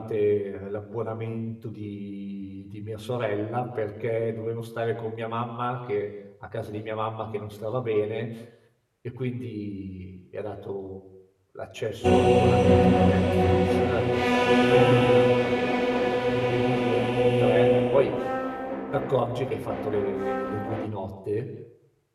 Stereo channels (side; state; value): both; identical; correlation 1.00